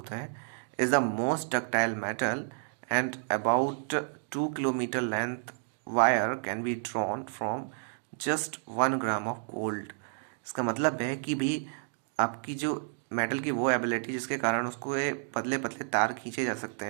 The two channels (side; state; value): left; silent; digital silence